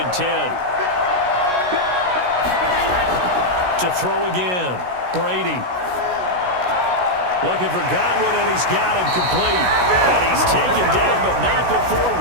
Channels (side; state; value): left; late; 16 ms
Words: 10. To throw again, Brady. Looking for Godwin, and he's got him complete. And he's taken down, but not before